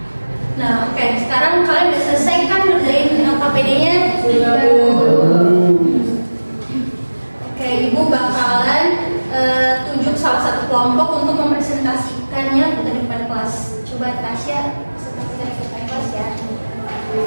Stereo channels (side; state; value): both; inverted; correlation -1.00